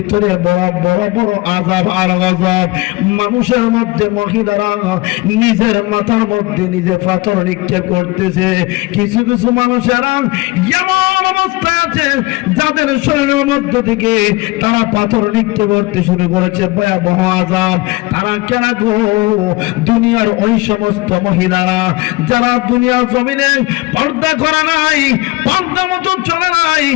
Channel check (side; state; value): right; quieter; 22.0 dB